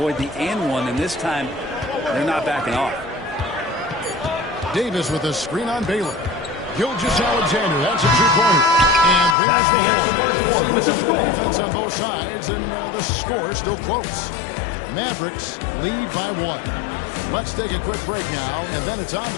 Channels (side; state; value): right; drops out; at 9.3 s